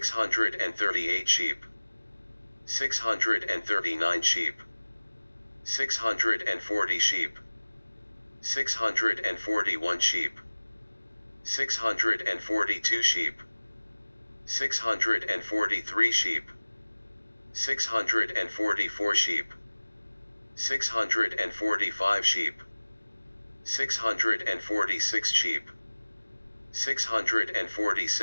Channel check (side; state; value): both; inverted; correlation -1.00